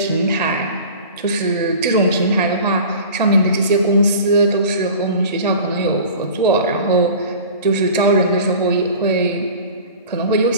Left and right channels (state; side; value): inverted; both; correlation -0.40